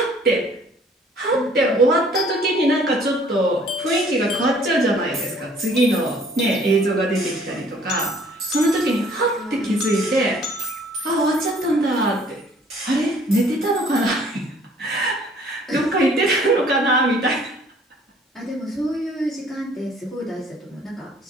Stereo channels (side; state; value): both; normal; correlation 0.57